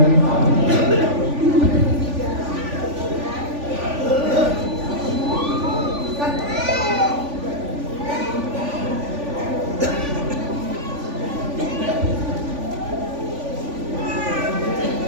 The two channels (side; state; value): left; late; 3.5 ms